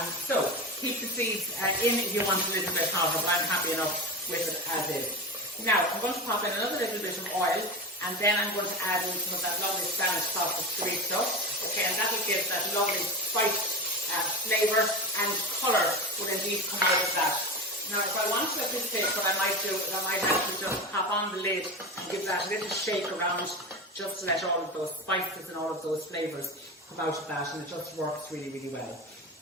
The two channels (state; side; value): normal; both; correlation 0.24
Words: So keep the seeds in if you want a little bit hotter, but I'm happy enough with it as is. Now I'm going to pop in another little bit of oil, and then I'm going to add in some of that lovely Spanish sauce of chorizo. Okay, and that will give that lovely spice. Flavour and colour will indeed come out of that. Now if I want to at this stage, what I might do is I might actually just pop on the lid and give that a little shake around, just to let all of those spices and all of those flavours come out of that, and it just works really, really well.